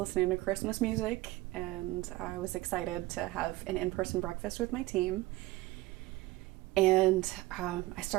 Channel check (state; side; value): quieter; left; 19.1 dB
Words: to Christmas music and I was excited to have an in-person breakfast with my team. And I